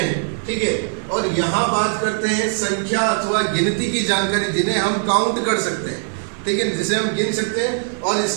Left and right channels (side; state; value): left; silent; 58 dB below the other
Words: ठीक है। और यहाँ बात करते हैं संख्या अथवा गिनती की जानकारी जिन्हें हम काउंट कर सकते हैं, ठीक है, जिसे हम गिन सकते हैं। और